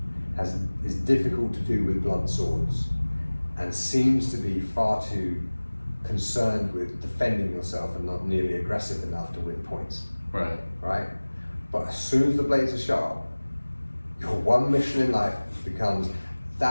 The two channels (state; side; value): inverted; both; correlation -1.00